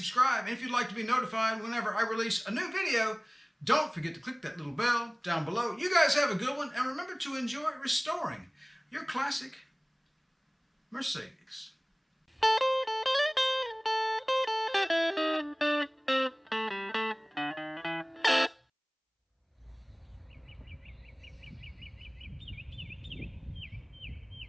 And if you'd like to be notified whenever I release a new video, don't forget to click that little bell down below. You guys have a good one, and remember to enjoy restoring your classic Mercedes.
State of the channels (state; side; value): identical; both; correlation 1.00